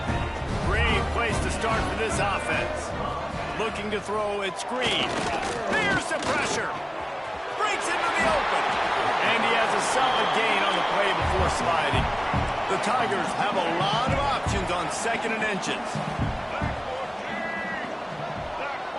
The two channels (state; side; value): identical; both; correlation 1.00